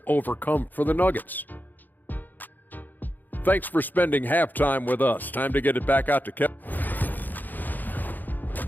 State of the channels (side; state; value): right; late; 0.086 ms